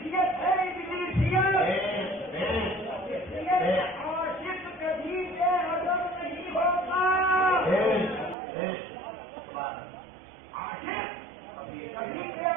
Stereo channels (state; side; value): drops out; left; at 8.3 s